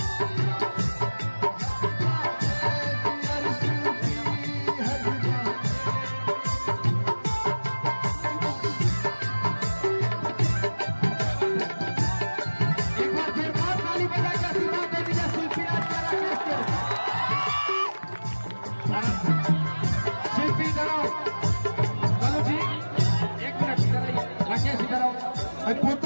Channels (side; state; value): both; inverted; correlation -1.00